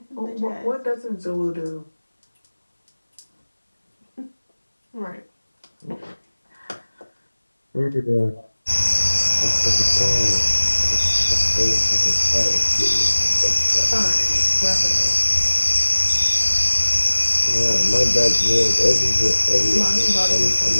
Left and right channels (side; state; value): both; inverted; correlation -1.00